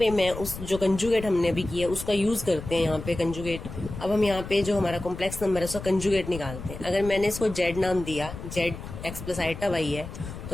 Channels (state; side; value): noise; left; rumble, 11 dB below the sound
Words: मैं उस जो कंजुगेट हमने अभी किया उसका यूज करते हैं यहाँ पे कंजुगेट। अब हम यहाँ पे जो हमारा कॉम्प्लेक्स नंबर है उसका कंजुगेट निकालते हैं। अगर मैंने इसको जेड नाम दिया, Z x plus iota Y है,